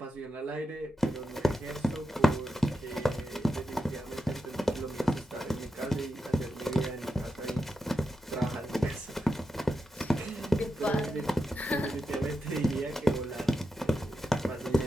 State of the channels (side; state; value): both; normal; correlation 0.88